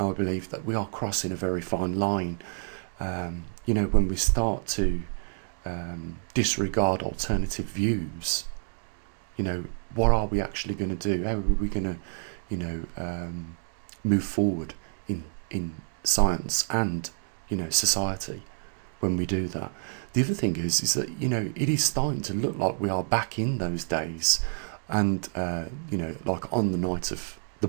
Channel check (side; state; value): left; silent; digital silence